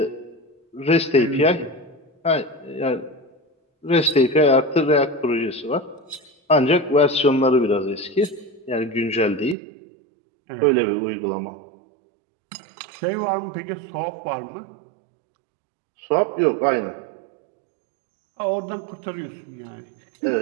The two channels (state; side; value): drops out; left; at 9.6 s